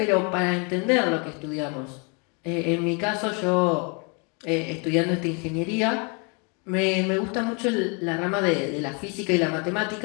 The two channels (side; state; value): right; quieter; 34.3 dB